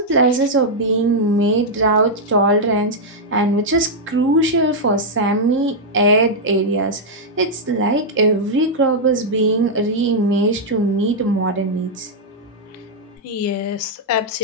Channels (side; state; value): both; normal; correlation -0.04